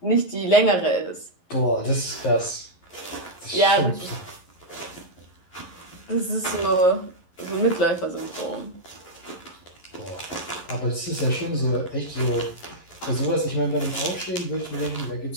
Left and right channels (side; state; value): right; late; 11 ms